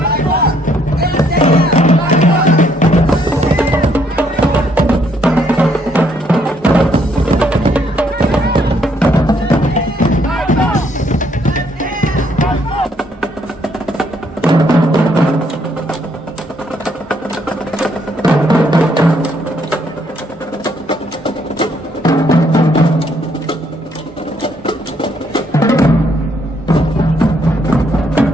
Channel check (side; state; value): both; normal; correlation 0.69